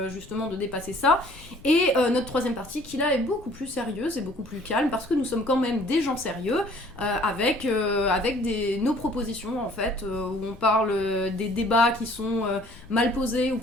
justement de dépasser ça. Et notre troisième partie qui là est beaucoup plus sérieuse et beaucoup plus calme parce que nous sommes quand même des gens sérieux avec nos propositions en fait où on parle des débats qui sont mal posés ou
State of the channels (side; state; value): left; noise; rumble, 21 dB below the sound